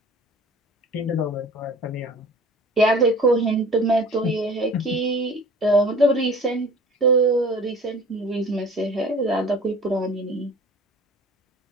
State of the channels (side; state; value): both; normal; correlation 0.45